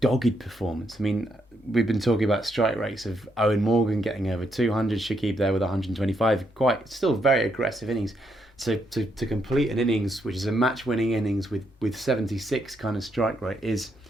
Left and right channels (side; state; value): both; normal; correlation 0.77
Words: dogged performance. I mean, we've been talking about strike rates of Eoin Morgan getting over 200, Shakib there with 125, still very aggressive innings. So to complete an innings, which is a match-winning innings with 76 kind of strike rate, is